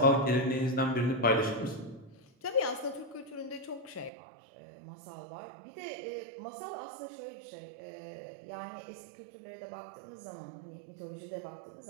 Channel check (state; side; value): drops out; left; at 4.1 s